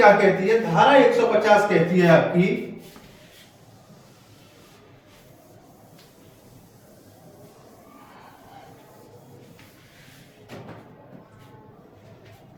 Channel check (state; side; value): identical; both; correlation 1.00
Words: कहती है, धारा 150 कहती है आपकी,